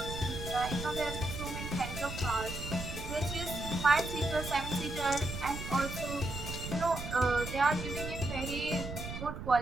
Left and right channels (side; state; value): right; noise; rumble, 7 dB below the sound